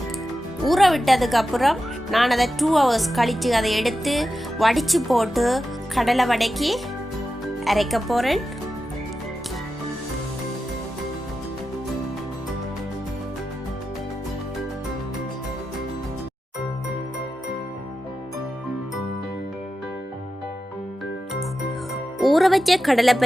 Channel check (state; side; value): normal; both; correlation 0.91